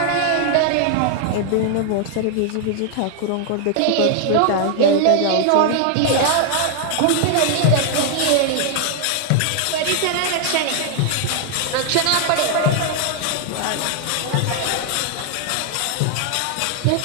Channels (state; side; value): different; both; correlation 0.00